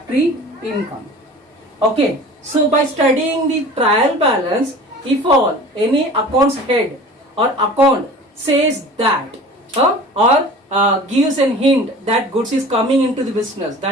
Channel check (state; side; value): normal; both; correlation 0.41